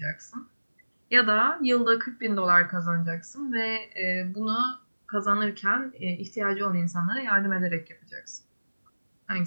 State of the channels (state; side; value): inverted; both; correlation -1.00